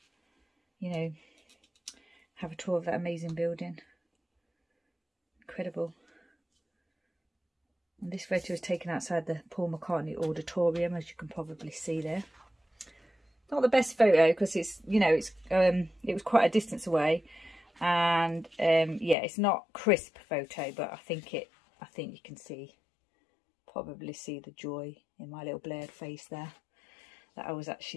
you know, have a tour of that amazing building. Incredible. And this photo was taken outside the Paul McCartney Auditorium, as you can probably see there. Not the best photo because it's, you know, it's it was quite a distance away, and yeah, it's not crisp photo, but I think you can probably see the joy in my little blurred face there, that I was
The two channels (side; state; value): right; drops out; at 19.2 s